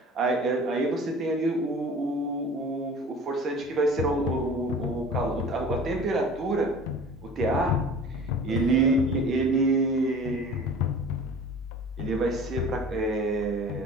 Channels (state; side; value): normal; both; correlation 0.42